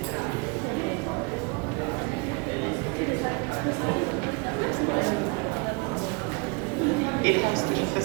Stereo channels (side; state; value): left; quieter; 31.2 dB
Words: It has to